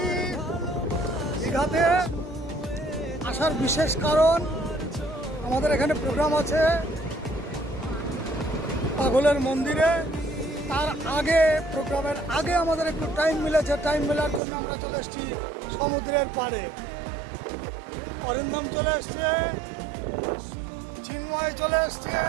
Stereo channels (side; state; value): left; drops out; at 14.4 s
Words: দীঘাতে আসার বিশেষ কারণ আমাদের এখানে প্রোগ্রাম আছে পাগলের মন্দিরে। তার আগে প্রোগ্রামের আগে আমাদের একটু টাইম মিলেছে, টাইম মেলার জন্য আমরা চলে এসেছি সমুদ্রের পাড়ে। অরিন্দম চলে এসছে, চিন্ময় চলে এসছে,